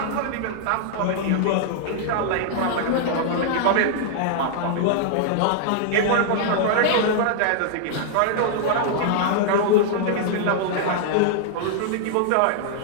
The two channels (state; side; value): different; both; correlation -0.01